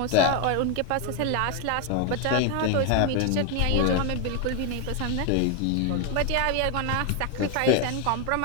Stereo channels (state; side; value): different; both; correlation 0.01